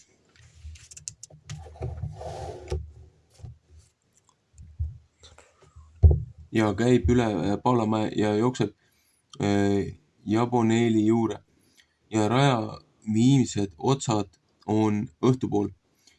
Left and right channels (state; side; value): identical; both; correlation 1.00